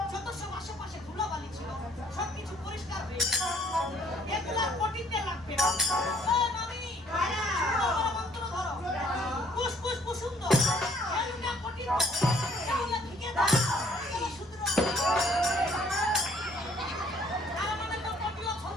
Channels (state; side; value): normal; both; correlation 0.62